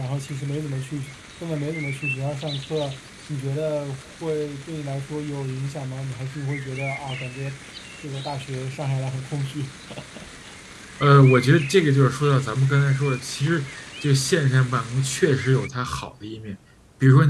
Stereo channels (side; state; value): both; identical; correlation 1.00